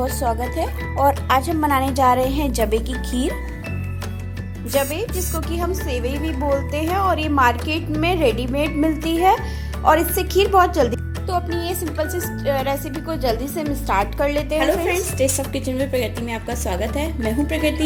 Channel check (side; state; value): both; identical; correlation 1.00